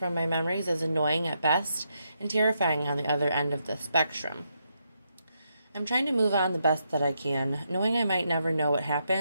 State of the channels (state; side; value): inverted; both; correlation -0.80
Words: my memories is annoying at best and terrifying on the other end of the spectrum. I'm trying to move on the best that I can, knowing I might never know what